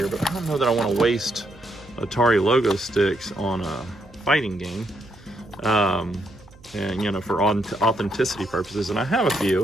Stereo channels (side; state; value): right; noise; hum, 24 dB below the sound